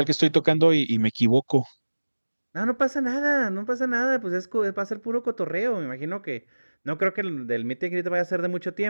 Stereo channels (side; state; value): both; inverted; correlation -1.00